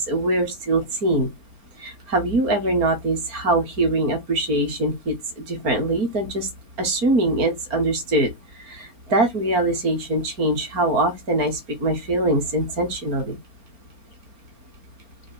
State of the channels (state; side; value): late; left; 4.4 ms